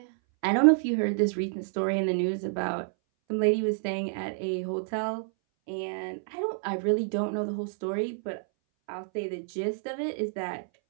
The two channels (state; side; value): silent; left; 59 dB below the other